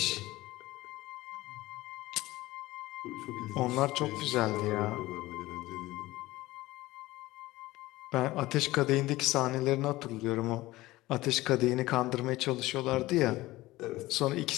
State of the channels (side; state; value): right; quieter; 18.3 dB